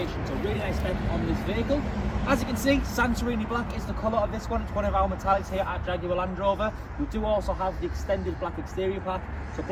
so really nice spec on this vehicle. As you can see, Santorini Black is the colour of this one. It's one of our metallics here at Jaguar Land Rover. We do also have the extended black exterior pack, so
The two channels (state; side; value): identical; both; correlation 1.00